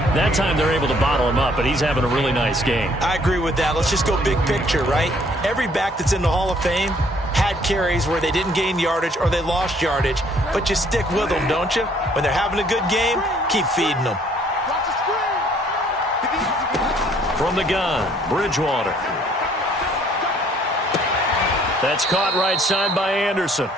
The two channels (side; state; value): both; normal; correlation 0.62